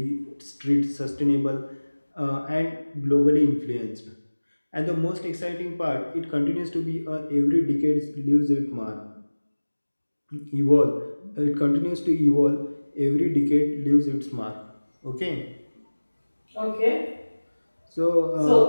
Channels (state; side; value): inverted; both; correlation -1.00